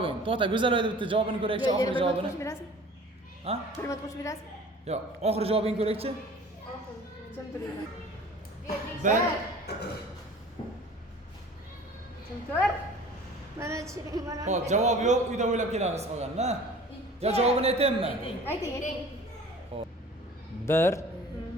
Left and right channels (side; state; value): both; normal; correlation 0.45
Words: To'xta, Go'zaloyda bitta javobini ko'raychi, oxirgi javobini. Qo'shib berasizmi? Ha? 1 minut qo'shib berasizmi? Yo'q, oxirgi javobingni ko'raychi. Kim turing? 1 Kim tur? Mana chiring mana. Xo'p, javob yo'q, uyda o'ylab kelamiz qolganini. Yo, javobini aytaymi? Ayting. 1